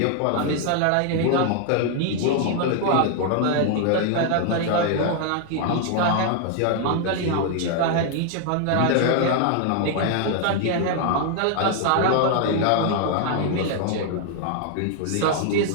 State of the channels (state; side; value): different; both; correlation 0.00